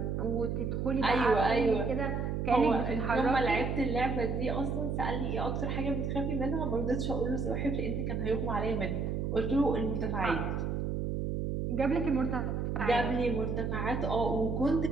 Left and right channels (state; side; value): noise; right; hum, 1 dB below the sound